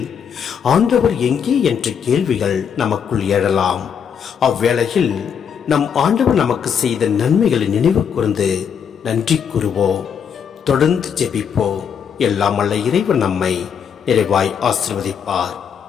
ஆண்டவர் எங்கே என்ற கேள்விகள் நமக்குள் எழலாம். அவ்வேளையில் நம் ஆண்டவர் நமக்கு செய்த நன்மைகளை நினைவு கூர்ந்து நன்றி கூறுவோம். தொடர்ந்து ஜெபிப்போம். எல்லாம் வல்ல இறைவன் நம்மை நிறைவாய் ஆசீர்வதிப்பார்.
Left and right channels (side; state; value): right; quieter; 7.5 dB